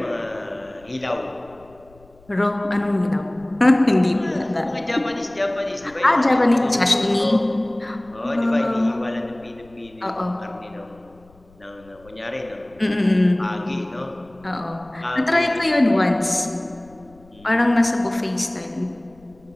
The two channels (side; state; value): left; noise; rumble, 28 dB below the sound